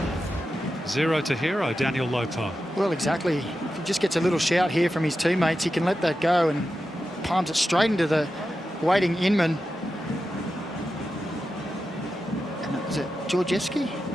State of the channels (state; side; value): normal; both; correlation 0.91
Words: 0 to hero, Daniel Lopez. Well, exactly. If he just gets a little shout here from his teammates, he can let that go and palms it straight into the waiting Inman. And was it Georgievski? I